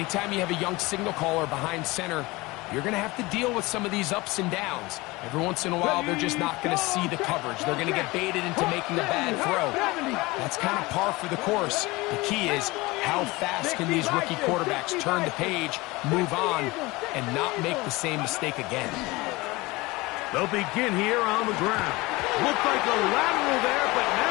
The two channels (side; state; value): right; quieter; 22.1 dB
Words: you have a young signal caller behind center, you're going to have to deal with some of these ups and downs. Every once in a while, they're just not going to see the coverage. They're going to get baited into making a bad throw. That's kind of par for the course. The key is, how fast can these rookie quarterbacks turn the page, move on, and not make the same mistake again? They'll begin here on the ground. Looked like a lateral there, but